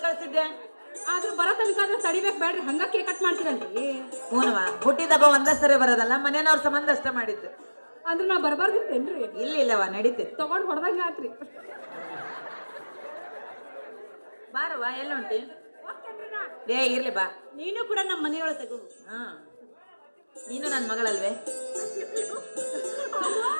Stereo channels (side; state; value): both; inverted; correlation -1.00